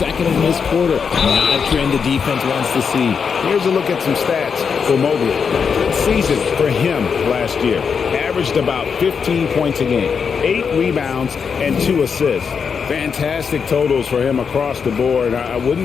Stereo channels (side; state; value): right; quieter; 6.2 dB